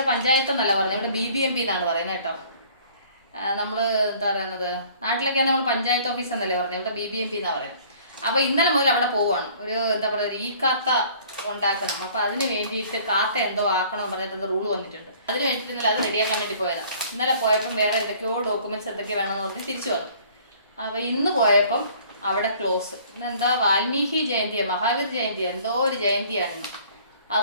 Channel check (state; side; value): inverted; both; correlation -0.54